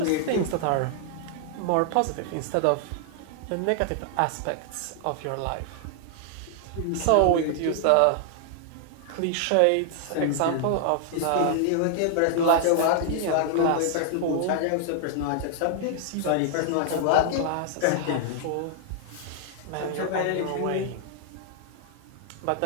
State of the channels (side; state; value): both; different; correlation -0.01